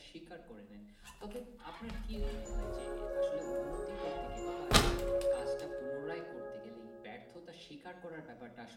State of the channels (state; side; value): identical; both; correlation 1.00